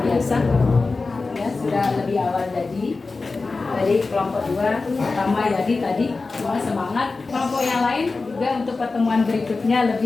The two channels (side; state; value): right; quieter; 3.9 dB